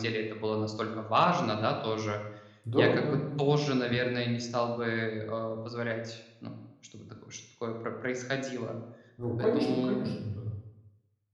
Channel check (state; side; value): identical; both; correlation 1.00